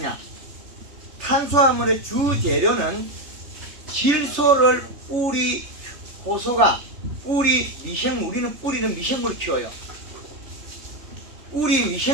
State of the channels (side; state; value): left; late; 3.3 ms